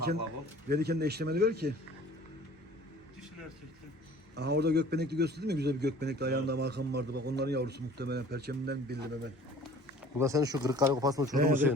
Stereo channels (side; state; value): both; normal; correlation 0.49